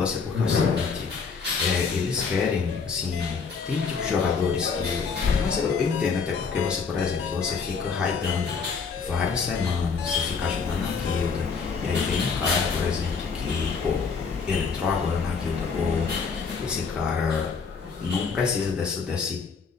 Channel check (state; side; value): quieter; right; 5.4 dB